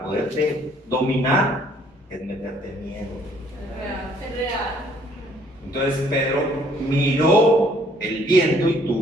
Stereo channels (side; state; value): both; normal; correlation 0.62